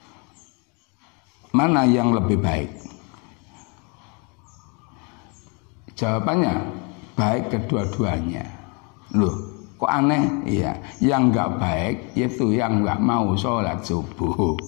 mana yang lebih baik? Jawabannya baik kedua-duanya. Loh, kok aneh? Iya, yang enggak baik itu yang enggak mau sholat subuh.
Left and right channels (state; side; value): quieter; right; 33.2 dB